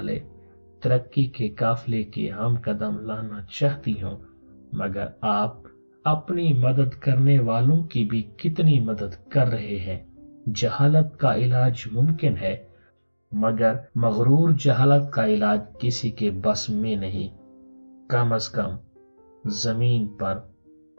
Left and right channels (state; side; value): inverted; both; correlation -1.00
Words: ترقی کے قافلے کے ہم قدم لانا چاہتی ہوں، مگر آپ اپنی مدد کرنے والوں کی بھی کتنی مدد کر رہے ہیں۔ جہالت کا علاج ممکن ہے، مگر مغرور جہالت کا علاج کسی کے بس میں نہیں، کم از کم زمین پر